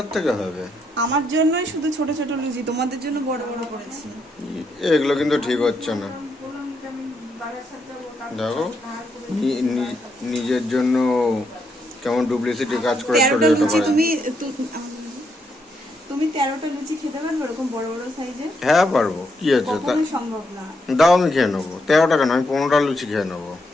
থেকে হবে? আমার জন্যই শুধু ছোট ছোট লুচি, তোমাদের জন্য বড় বড় করেছি। এগুলো কিন্তু ঠিক হচ্ছে না। দেখো নিজের জন্য কেমন ডুপ্লিসিটি কাজ করে চলে যেতে পারে। তুমি 13টা লুচি খেতে পারবে এরকম বড় বড় সাইজের? হ্যাঁ পারবো, কি আছে, তা সম্ভব না। দাও আমি খেয়ে নেবো, 13 টাকা নয় 15টা লুচি খেয়ে নেবো।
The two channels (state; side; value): normal; both; correlation 0.78